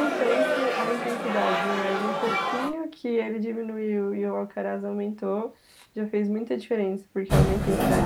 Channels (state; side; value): identical; both; correlation 1.00